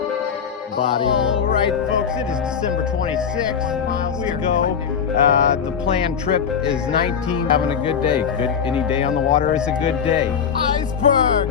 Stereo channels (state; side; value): quieter; right; 7.1 dB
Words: Body. All right, folks, it is December 26th. We go. The planned trip is 19. Having a good day. Any day on the water is a good day.